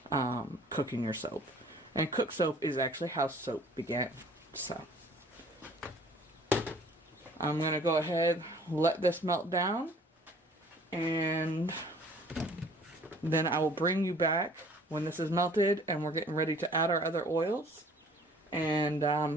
Cooking your soap. And cook soap is actually how soap began. So I'm going to go ahead, let this melt down, and then I will bring you back when this is melted and we're getting ready to add our other oils and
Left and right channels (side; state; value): both; normal; correlation 0.53